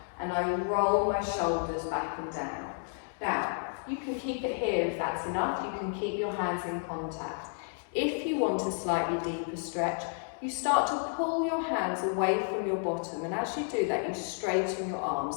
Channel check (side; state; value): right; silent; 57 dB below the other